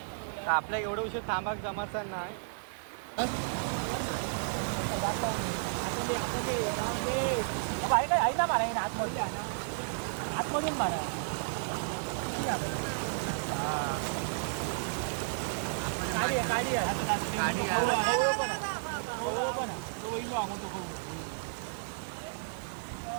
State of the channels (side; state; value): left; silent; digital silence